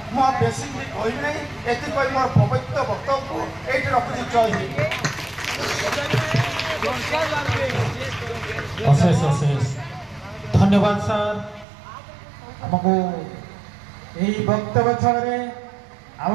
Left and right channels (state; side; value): drops out; left; at 11.7 s